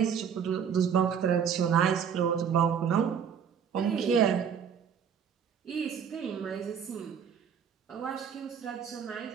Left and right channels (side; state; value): left; quieter; 7.5 dB